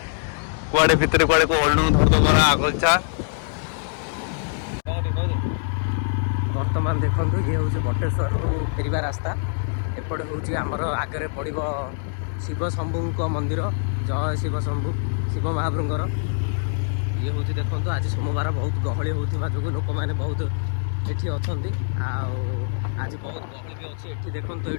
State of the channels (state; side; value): silent; right; digital silence